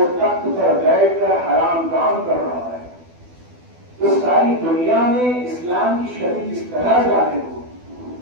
تخت پر بیٹھ کر حرام کام کر رہا ہے. تو ساری دنیا میں اسلام کی شریعت اس طرح ظاہر ہو.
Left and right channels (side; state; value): left; late; 12 ms